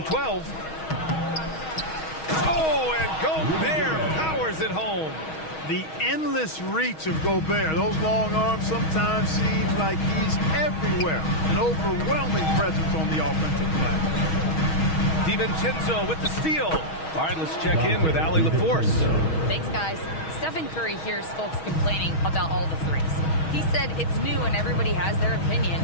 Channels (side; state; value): right; late; 6.3 ms